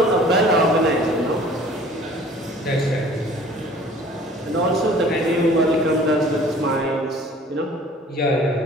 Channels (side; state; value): both; normal; correlation 0.50